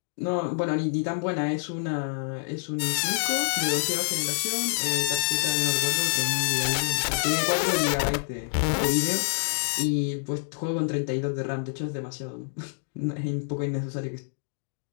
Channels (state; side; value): silent; right; digital silence